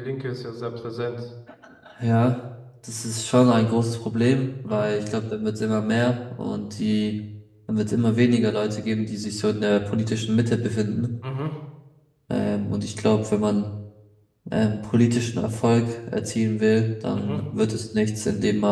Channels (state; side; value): identical; both; correlation 1.00